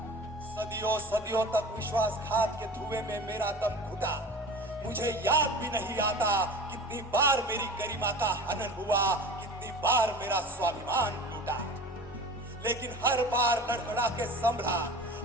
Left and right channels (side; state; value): both; normal; correlation 0.37